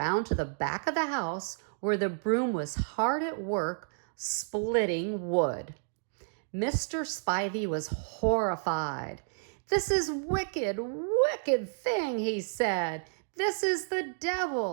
to the back of the house where the broom was hard at work splitting wood. Mr. Spivey was horrified. "This is wicked, wicked thing," he said. "This is the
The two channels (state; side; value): silent; left; digital silence